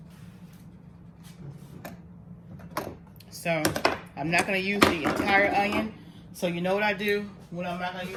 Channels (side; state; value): both; identical; correlation 1.00